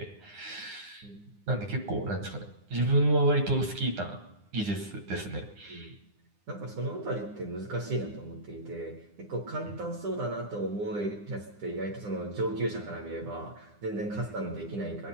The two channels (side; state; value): left; late; 9.8 ms